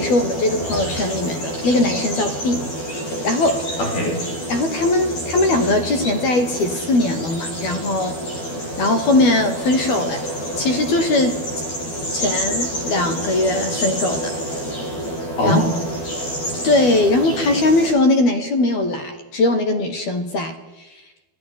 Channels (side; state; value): right; late; 12 ms